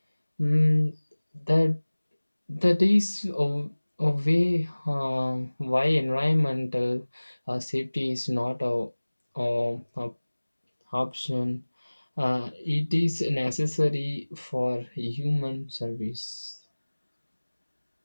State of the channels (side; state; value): both; inverted; correlation -1.00